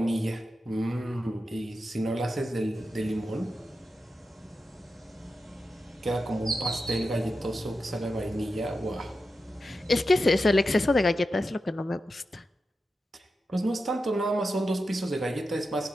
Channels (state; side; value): normal; both; correlation 0.90